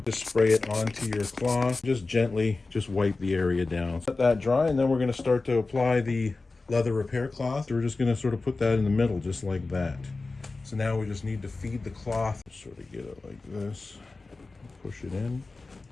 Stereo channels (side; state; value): right; quieter; 3.6 dB